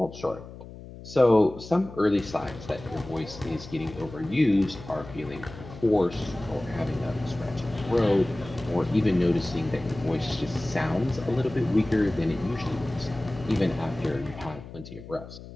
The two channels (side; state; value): left; noise; hum, 15 dB below the sound